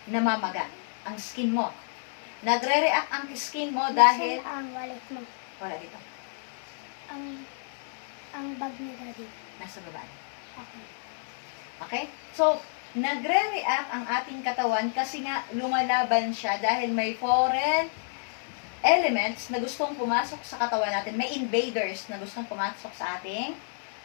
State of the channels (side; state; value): right; silent; digital silence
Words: namamaga ang skin mo. Nagre-react ang skin mo dahil... Saan ang wallet mo? Wala dito. Ang bag ni Daddy. Nasa baba. Okay. Okay? So, nagre-react ang ating katawan kasi nga lumalaban siya dahil may foreign elements na gustong pumasok sa katawan natin. May invaders na gustong pumasok sa ating